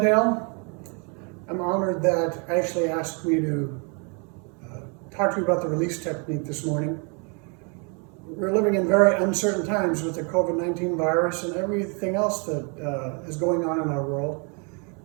I'm honored that Ashley asked me to talk to you about the release technique this morning. We're living in very uncertain times with the COVID-19 virus and everything else that is going on in our world.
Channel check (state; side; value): quieter; left; 35.6 dB